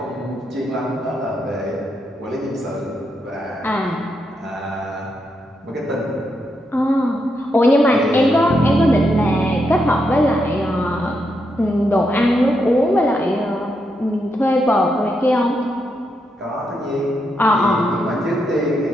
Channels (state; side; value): normal; both; correlation 0.82